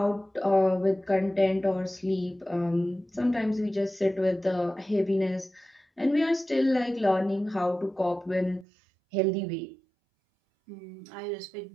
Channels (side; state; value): left; drops out; at 8.7 s